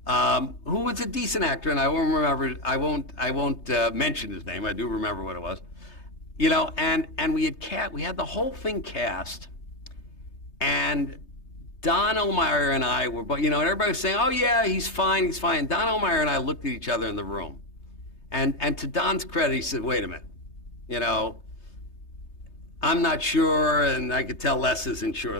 who was a decent actor, and I won't remember. I won't mention his name. I do remember what it was. You know, and we had the whole thing cast, and Don O'Meara and I were, but you know, and everybody was saying, "Oh yeah, he's fine, he's fine." Don O'Meara and I looked at each other in the room, and to Don's credit, he said, "Wait a minute, you know, I'm not sure, and I could tell Les isn't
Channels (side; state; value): right; late; 3.3 ms